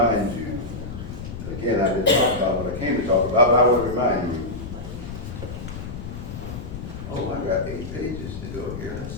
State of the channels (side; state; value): left; noise; rumble, 9 dB below the sound